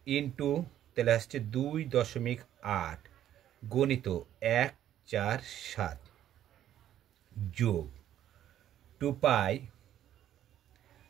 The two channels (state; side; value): quieter; left; 11.5 dB